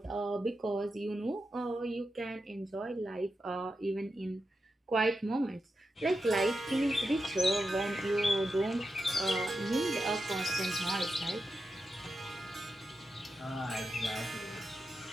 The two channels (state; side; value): normal; both; correlation 0.88